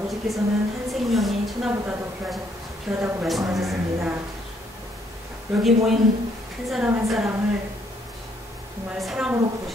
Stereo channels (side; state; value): both; normal; correlation 0.69